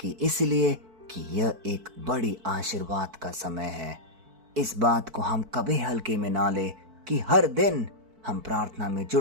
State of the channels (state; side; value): late; left; 4.5 ms